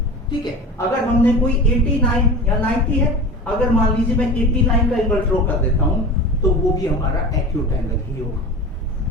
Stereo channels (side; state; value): both; normal; correlation 0.32